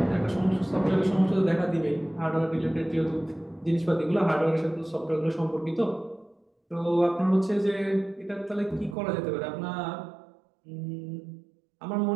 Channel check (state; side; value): drops out; left; at 9.0 s